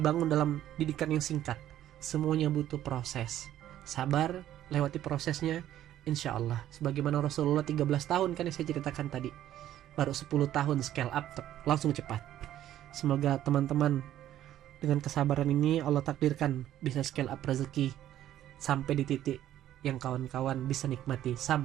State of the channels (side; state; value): left; quieter; 12.3 dB